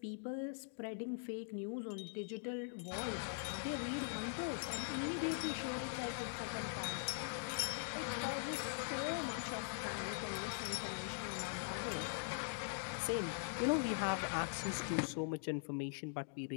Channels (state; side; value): silent; right; digital silence